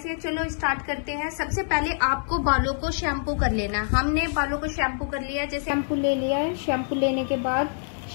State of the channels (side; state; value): right; silent; 60 dB below the other